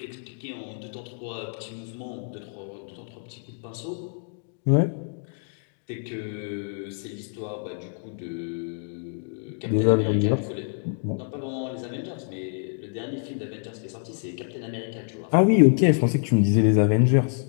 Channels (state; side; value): silent; right; 60 dB below the other